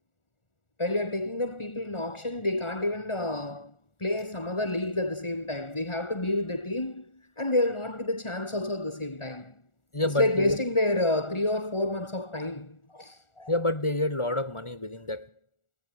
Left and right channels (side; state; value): right; late; 1.4 ms